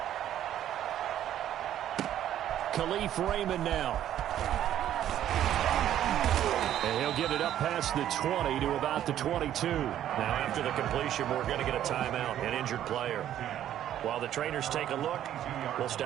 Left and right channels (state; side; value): quieter; left; 11.4 dB